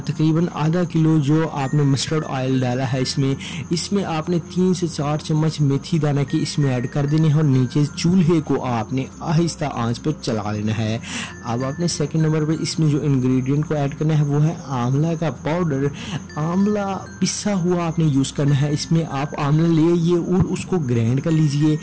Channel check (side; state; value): both; identical; correlation 1.00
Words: तकरीबन आधा किलो जो आपने मस्टर्ड ऑयल डाला है इसमें आपने 3 से 4 चम्मच मेथी दाना की इसमें ऐड कर देने हैं और नीचे चूल्हे को आपने आहिस्ता आंच पर चला लेना है। अब आपने सेकंड नंबर पर इसमें जो इंग्रेडिएंट को ऐड करना है वो है आंवला का पाउडर। आंवला पिसा हुआ आपने यूज़ करना है। इसमें आप आंवला ले आइए और उसको ग्राइंड कर लीजिए।